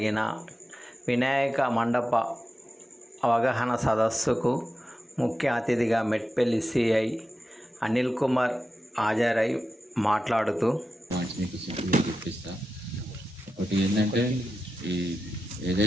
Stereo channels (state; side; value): normal; both; correlation 0.91